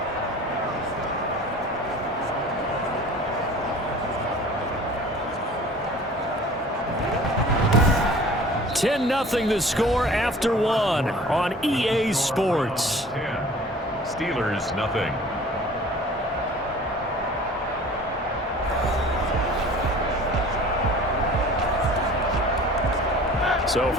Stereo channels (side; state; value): both; normal; correlation 0.45